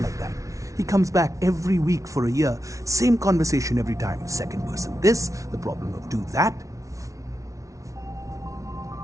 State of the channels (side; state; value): left; late; 0.16 ms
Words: like that. He comes back every week for a year. Same conversation every time. Second person this, the problem of two that.